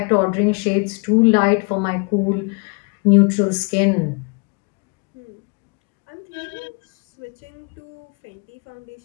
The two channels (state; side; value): quieter; right; 33.9 dB